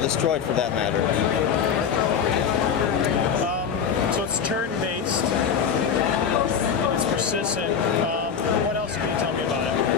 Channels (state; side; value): quieter; right; 7.1 dB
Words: for that matter. So it's turn-based. It's persistent. What else can you tell me about it?